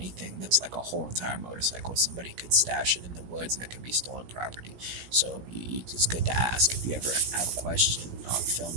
that's like a whole entire motorcycle. Somebody could stash it in the woods and it could be stolen property. So it's good to ask if you ever have a question, film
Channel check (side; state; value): left; late; 17 ms